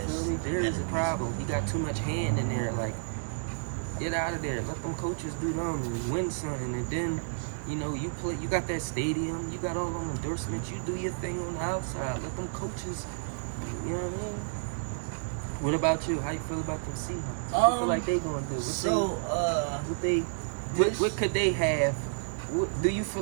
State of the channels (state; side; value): silent; left; digital silence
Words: feel me? Jerry's a problem. He got too much hand in there. Like, get out of there. Let them coaches do them and win something. And then, you play. You got that stadium. You got all them endorsements. You do your thing on the outside. Let them coaches. You know what I mean? What about you? How you feel about them Seahawks? What you feel like they gonna do? What could they have? Do you feel